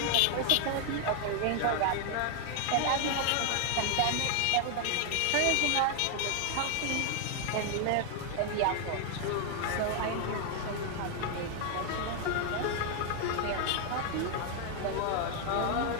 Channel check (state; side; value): different; both; correlation 0.00